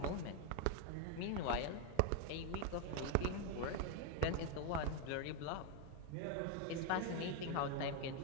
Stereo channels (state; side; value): different; both; correlation 0.02